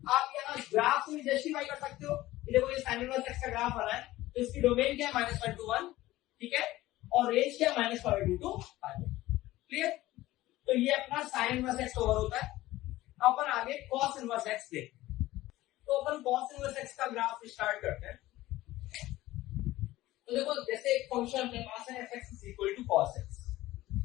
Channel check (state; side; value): quieter; right; 16.7 dB